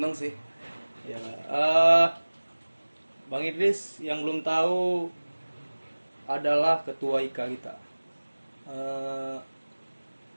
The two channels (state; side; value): inverted; both; correlation -1.00